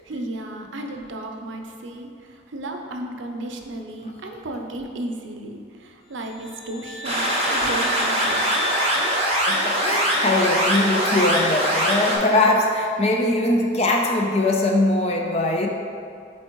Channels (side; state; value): both; normal; correlation 0.20